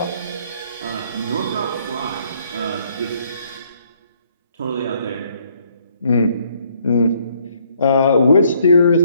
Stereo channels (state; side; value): inverted; both; correlation -0.67